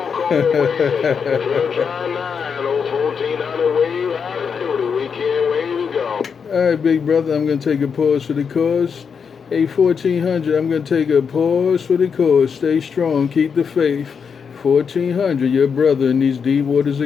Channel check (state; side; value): quieter; right; 6.3 dB